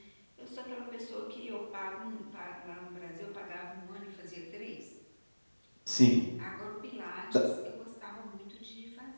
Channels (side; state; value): both; inverted; correlation -1.00